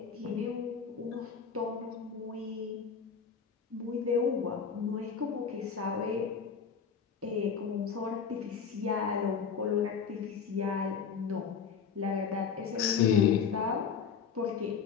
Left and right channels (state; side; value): quieter; right; 6.5 dB